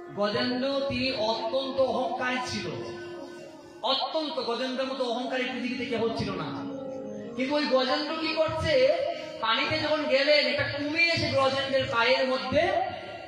গজেন্দ্র তিনি অত্যন্ত অহংকারী ছিল, অত্যন্ত, গজেন্দ্রের মতো অহংকারী পৃথিবীতে কেউ ছিল না। কিন্তু ওই গজেন্দ্র কি করছে, পানিতে যখন গেলেন একটা কুমির এসে গজেন্দ্রের পায়ের মধ্যে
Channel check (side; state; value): both; identical; correlation 1.00